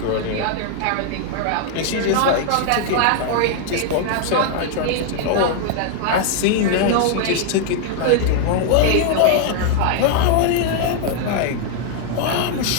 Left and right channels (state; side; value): different; both; correlation 0.00